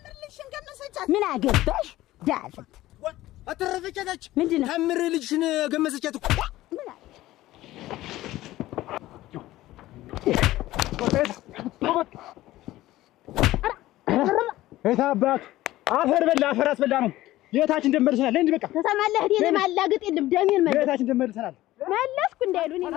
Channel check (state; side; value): quieter; right; 16.1 dB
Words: ልሽን ገመሰች ምን አገባሽ ዳፍንት አተረፈቻታች ምንድነው ታምር ልጅሽን ገመሰቻት እኮ ምን እታባት አፈር በላ አፈር አስበላ ነው የታችን ደመርሰናል እንዴ በቃ ተሰማለህ እኔ ማላግጥ የለም ደሜን መለስ የታችን ደመርሰናል መለስኩ እንዳይሉኝ